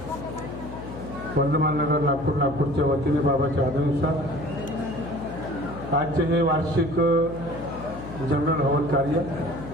वर्धमान नगर नागपूरच्या वतीने बाबाच्या आदेशानुसार आजचे हे वार्षिक जनरल हवन कार्य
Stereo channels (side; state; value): left; noise; hum, 12 dB below the sound